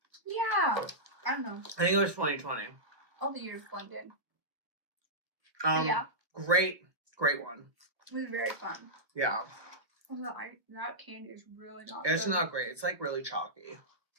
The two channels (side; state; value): left; late; 1.3 ms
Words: Yeah, I don't know. I think it was 2020. All the years blended. Yeah. Great one. It was very fun. Yeah. That candy is really not It's good. not great. It's like really chalky.